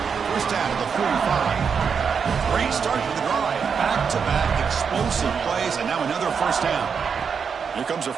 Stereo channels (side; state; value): left; quieter; 6.3 dB